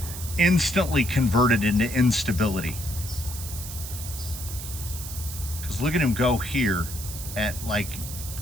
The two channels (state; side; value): noise; right; hiss, 9 dB below the sound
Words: instantly converted into instability. Because look at him go here at like